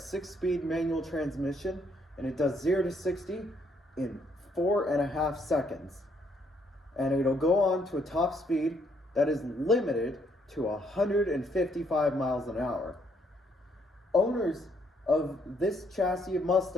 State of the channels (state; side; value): normal; both; correlation 0.70